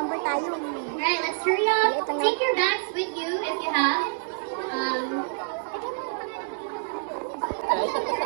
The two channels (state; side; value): silent; left; digital silence